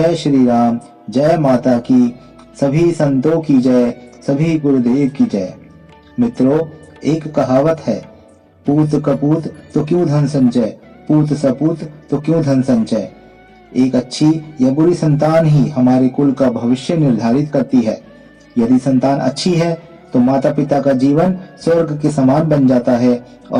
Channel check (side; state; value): both; identical; correlation 1.00